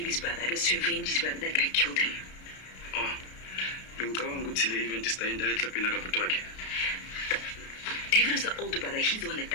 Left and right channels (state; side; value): late; right; 32 ms